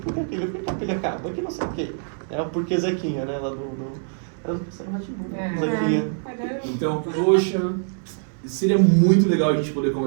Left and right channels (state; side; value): silent; left; 63 dB below the other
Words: que aquilo? Por que a pilha acaba? Por que não sei o quê? É o porquê Zequinha, né? Lá Zequinha. Então, poxa, seria muito legal a gente poder